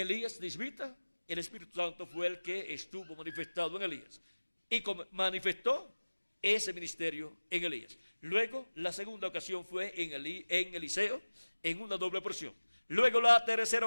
de Isbita, el Espíritu Santo fue el que estuvo manifestado en Elías y manifestó ese ministerio en Elías. Luego la segunda ocasión fue en Eliseo, en una doble porción. Luego la tercera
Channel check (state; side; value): inverted; both; correlation -1.00